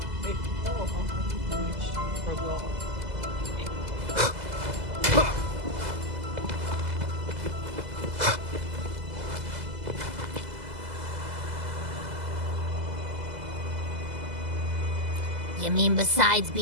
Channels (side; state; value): left; late; 2.0 ms